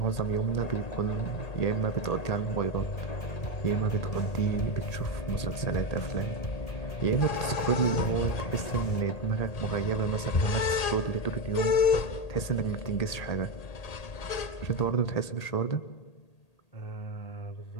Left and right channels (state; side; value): late; right; 1.8 ms